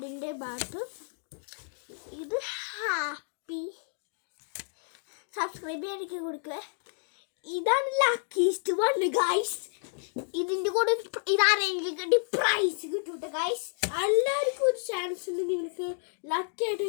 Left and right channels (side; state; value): right; silent; 58 dB below the other